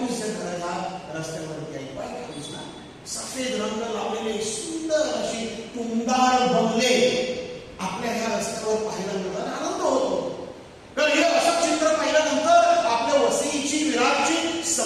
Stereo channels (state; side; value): identical; both; correlation 1.00